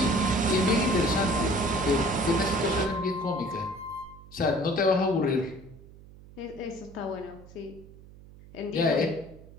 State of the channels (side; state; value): right; noise; hum, 20 dB below the sound